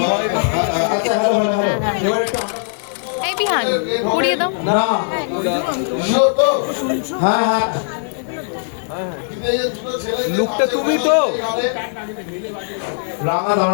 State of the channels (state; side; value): silent; right; 67 dB below the other